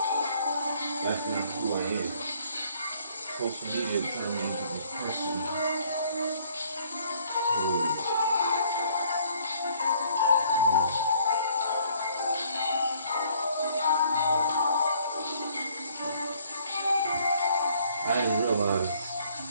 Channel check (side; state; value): both; inverted; correlation -0.62